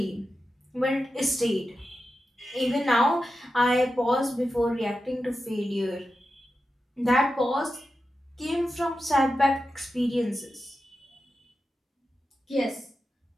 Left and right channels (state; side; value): normal; both; correlation 0.91